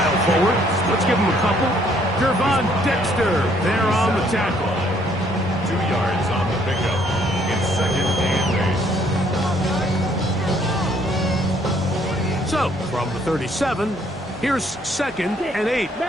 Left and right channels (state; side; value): normal; both; correlation 0.65